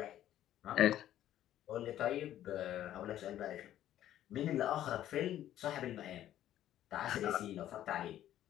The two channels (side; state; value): right; quieter; 12.2 dB